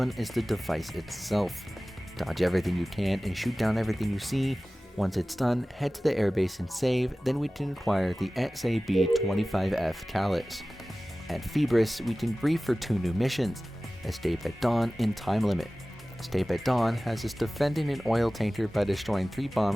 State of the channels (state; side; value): normal; both; correlation 0.97